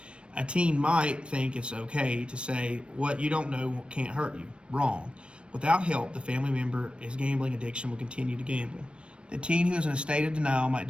A teen might think it's okay to say, what you don't know can't hurt you. Wrong. Without help, the family member's gambling addiction will continue to gamble. The teen who is in a state of denial might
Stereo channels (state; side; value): late; left; 0.058 ms